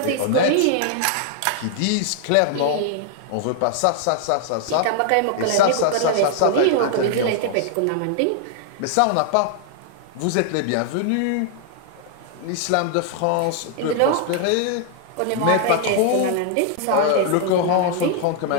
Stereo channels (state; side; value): different; both; correlation 0.00